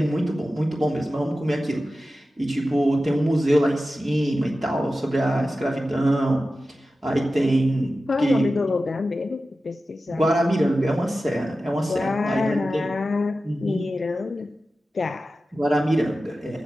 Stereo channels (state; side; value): normal; both; correlation 0.94